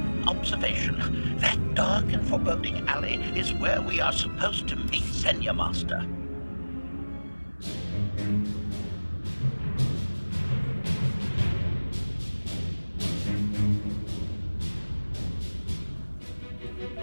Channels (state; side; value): inverted; both; correlation -1.00